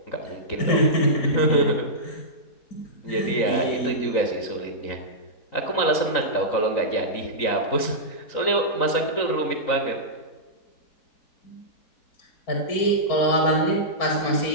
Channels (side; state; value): right; late; 3.9 ms